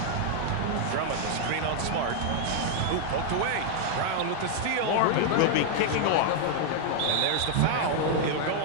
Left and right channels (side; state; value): both; different; correlation 0.00